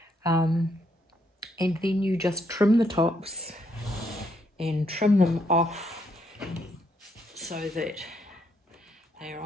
And then you just trim the tops and trim them off so that they're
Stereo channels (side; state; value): both; normal; correlation 0.74